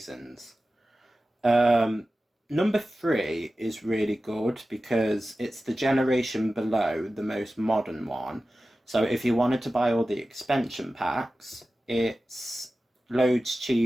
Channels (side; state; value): both; normal; correlation 0.95